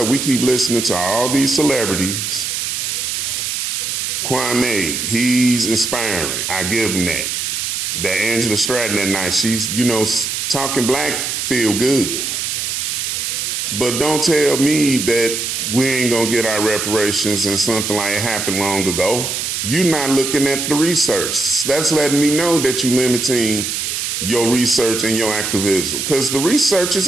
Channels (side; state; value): right; noise; hiss, 2 dB below the sound